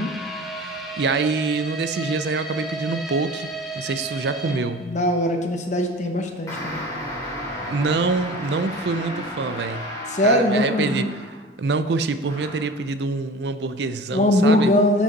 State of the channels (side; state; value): both; normal; correlation 0.38